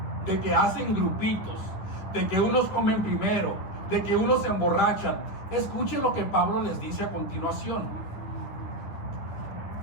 de que hacen grupitos, de que unos comen primero, de que unos se emborrachan, escuchen lo que Pablo les dice a continuación.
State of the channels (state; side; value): late; right; 9.7 ms